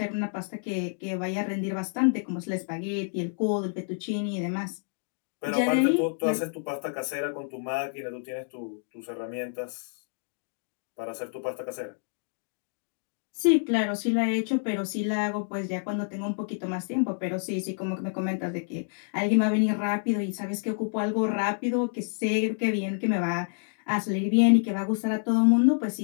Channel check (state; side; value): silent; right; digital silence